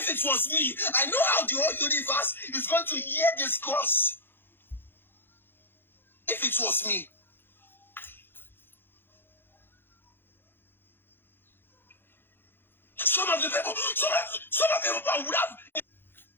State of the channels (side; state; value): right; late; 0.10 ms